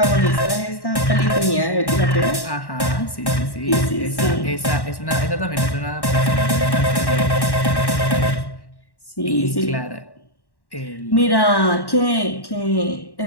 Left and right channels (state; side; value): late; right; 1.1 ms